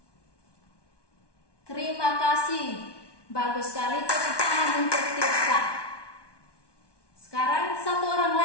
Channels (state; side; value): late; right; 1.2 ms